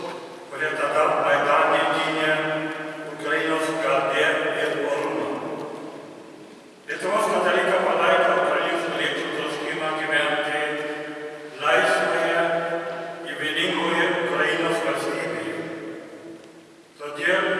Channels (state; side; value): identical; both; correlation 1.00